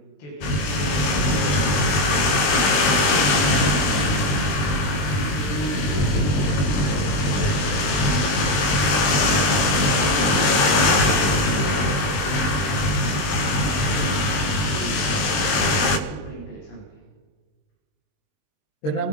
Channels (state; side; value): late; right; 20 ms